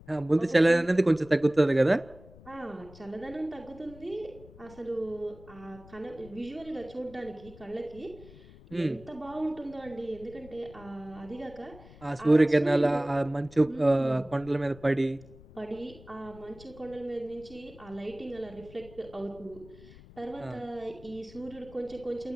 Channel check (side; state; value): left; noise; rumble, 20 dB below the sound